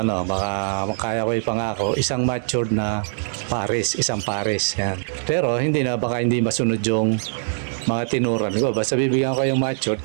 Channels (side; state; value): left; silent; digital silence